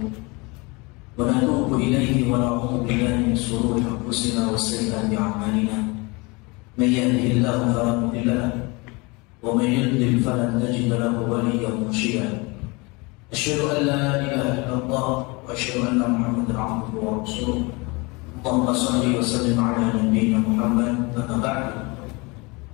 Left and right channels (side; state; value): right; quieter; 26.8 dB